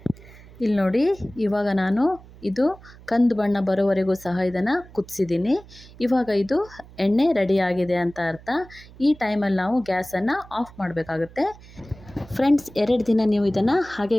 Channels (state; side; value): noise; right; hum, 21 dB below the sound